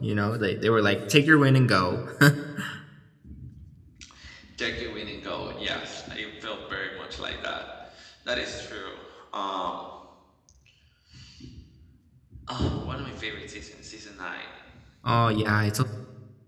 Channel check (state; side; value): identical; both; correlation 1.00